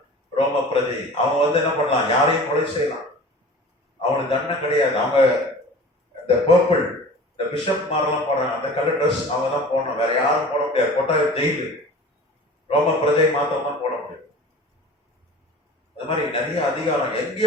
ரோம பிரஜை. அவங்க என்ன பண்ணலாம், யாரையும் கொலை செய்யலாம். அவங்களுக்கு தண்டனை கிடையாது. அவங்க இந்த பர்பிள், இந்த பிஷப் மாரெல்லாம் போடுறாங்க, அந்த கலர் ட்ரெஸ் அவங்க தான் போடணும். வேற யாரும் போட முடியாது. போட்டா ஜெயிலு. ரோம பிரஜை மாத்திரம் தான் போட முடியும். அது மாதிரி நிறைய அதிகாரம்.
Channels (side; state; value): both; normal; correlation 0.41